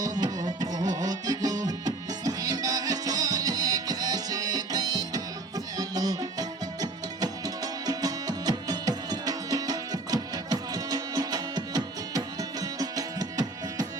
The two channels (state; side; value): quieter; left; 3.2 dB